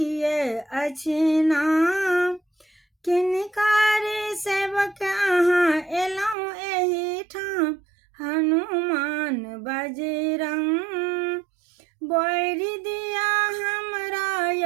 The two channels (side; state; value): left; drops out; at 6.4 s